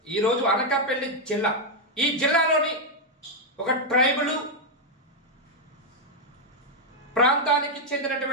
ఈరోజు అనకాపల్లి జిల్లా. ఈ జిల్లాలోని ఒక ట్రైబల్ ప్రాంతానికి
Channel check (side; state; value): both; normal; correlation 0.00